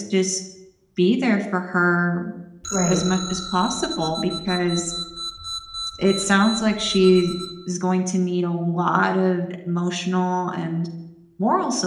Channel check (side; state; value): both; identical; correlation 1.00